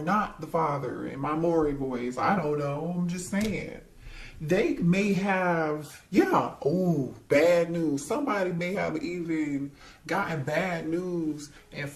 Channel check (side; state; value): both; identical; correlation 1.00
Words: not the father in my Maury voice. I don't know. I'm just saying. They may have, bad news. Somebody may have even gotten bad news and